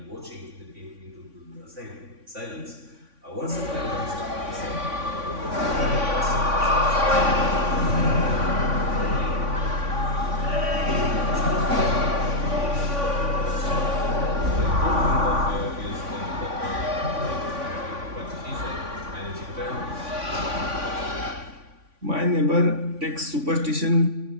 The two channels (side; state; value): left; late; 3.5 ms